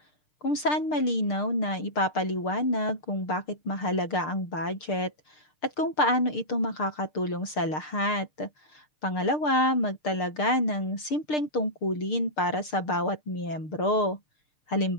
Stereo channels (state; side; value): late; right; 6.6 ms